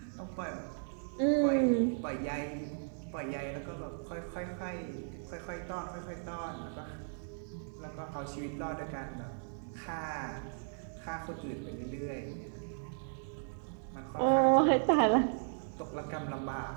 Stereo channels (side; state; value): left; silent; digital silence